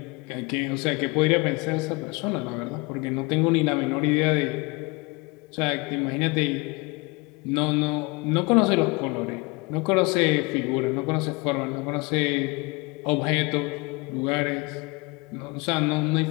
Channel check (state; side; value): quieter; right; 26.8 dB